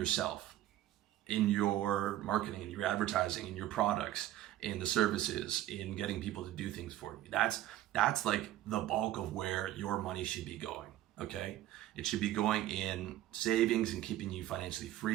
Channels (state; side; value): quieter; left; 13.8 dB